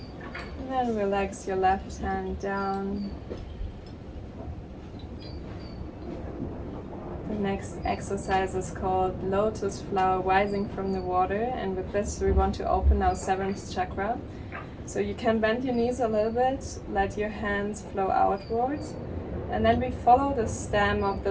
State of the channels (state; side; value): identical; both; correlation 1.00